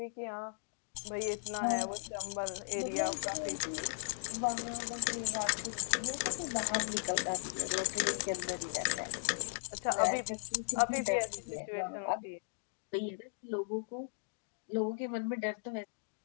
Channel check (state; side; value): silent; right; digital silence